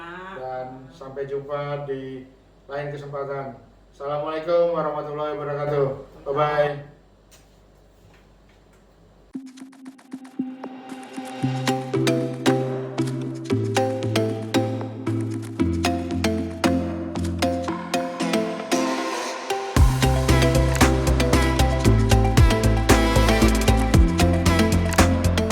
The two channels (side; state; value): both; identical; correlation 1.00